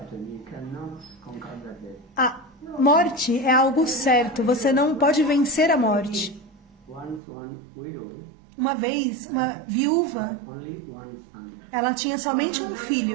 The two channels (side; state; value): left; drops out; at 7.2 s